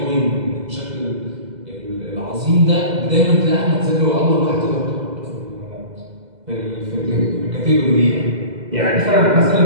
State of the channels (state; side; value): late; left; 2.0 ms